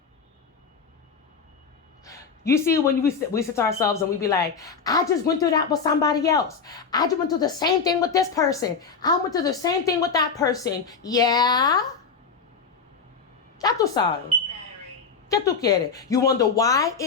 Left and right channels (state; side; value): quieter; right; 5.5 dB